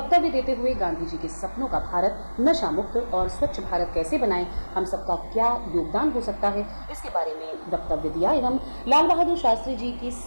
देते हुए गांधी जी के सपनों का भारत नशा मुक्त और स्वच्छ भारत कैसे बनाएं, हम सबका क्या योगदान हो सकता है, इसके बारे में वक्तव्य दिया एवं लाल बहादुर शास्त्री जी की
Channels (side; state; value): both; inverted; correlation -1.00